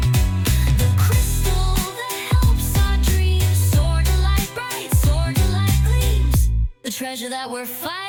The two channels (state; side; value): identical; both; correlation 1.00